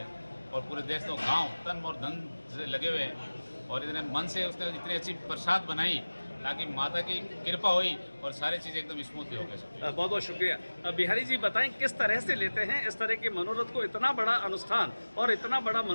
और पूरे देश गाँव तन और धन से लगे हुए हैं और इतने मन से उसने इतनी अच्छी प्रसाद बनाई ताकि माता की कृपा हुई और सारी चीज़ें एकदम स्मूथली हो गई। बहुत बहुत शुक्रिया। बिहारी जी बताएं किस तरह से लेते हैं इस तरह के मनोरथ को? इतना बड़ा अनुष्ठान और इतना बड़ा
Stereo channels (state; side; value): inverted; both; correlation -1.00